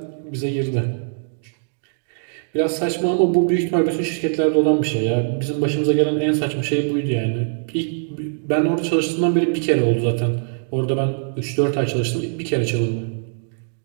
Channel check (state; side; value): silent; left; digital silence